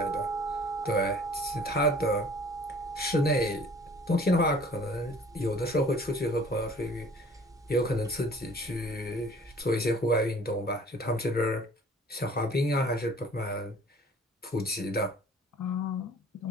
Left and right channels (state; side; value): normal; both; correlation 0.51